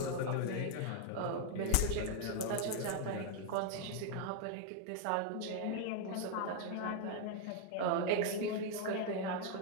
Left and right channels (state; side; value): different; both; correlation 0.00